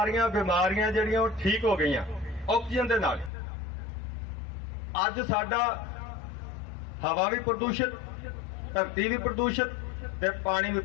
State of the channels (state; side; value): drops out; right; at 3.3 s